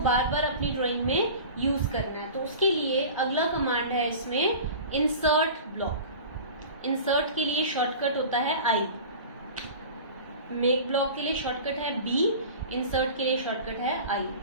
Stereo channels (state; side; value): inverted; both; correlation -0.37